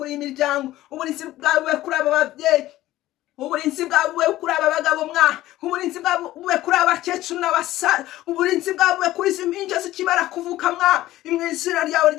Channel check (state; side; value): quieter; right; 15.5 dB